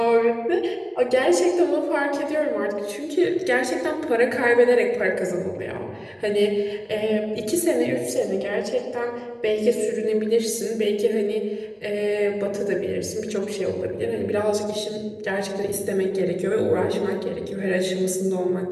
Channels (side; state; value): both; identical; correlation 1.00